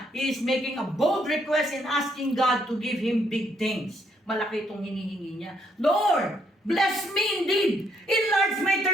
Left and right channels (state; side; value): normal; both; correlation 0.72